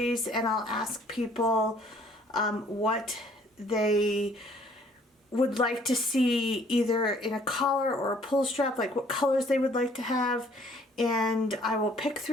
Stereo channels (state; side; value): normal; both; correlation 0.59